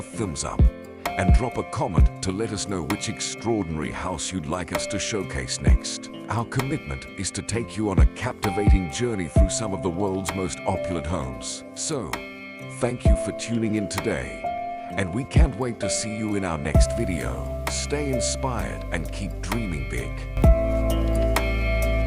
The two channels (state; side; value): identical; both; correlation 1.00